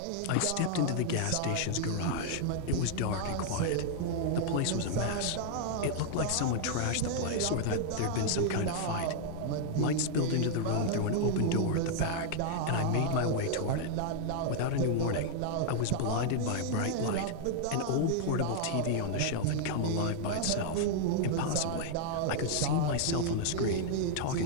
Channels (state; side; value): different; both; correlation 0.00